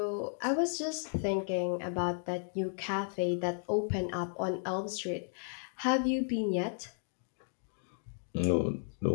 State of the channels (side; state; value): right; silent; digital silence